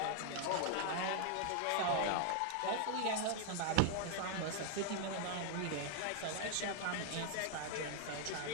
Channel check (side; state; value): both; different; correlation 0.00